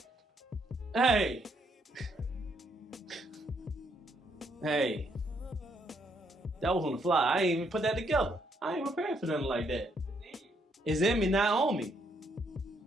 Hey. Hey. That was on the fly. I ain't even put that together. I ain't prepared for nothing like that. It's in me, not on me.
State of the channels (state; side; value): normal; both; correlation 0.73